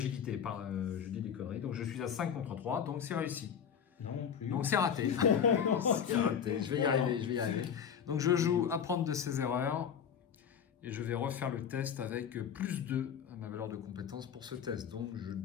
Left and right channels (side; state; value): right; quieter; 7.8 dB